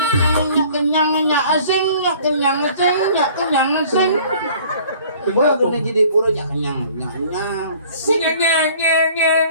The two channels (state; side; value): inverted; both; correlation -0.52